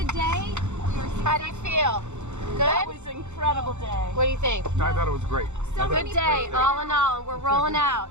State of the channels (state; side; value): late; left; 0.83 ms